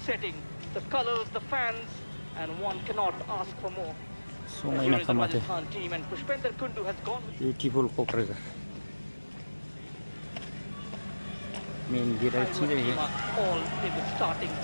setting, the colors, the fans, and one cannot ask for more. So Here is the Rajasthan team, and Pushpender Kundu has gone with beautiful cockroach. Main gear अच्छी रही है. all in the starting.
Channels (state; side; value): inverted; both; correlation -1.00